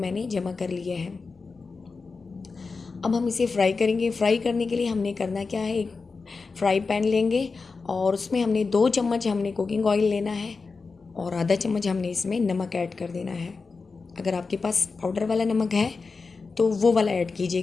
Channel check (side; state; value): right; quieter; 4.4 dB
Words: जमा कर लिए हैं। अब हम इसे फ्राई करेंगे। फ्राई करने के लिए हमने करना क्या है, एक फ्राई पैन लेंगे और उसमें हमने 2 चम्मच हमने कुकिंग ऑयल लेना है और आधा चम्मच हमने इसमें नमक ऐड कर देना है। अगर आपके पास पाउडर वाला नमक है तो वो वाला ऐड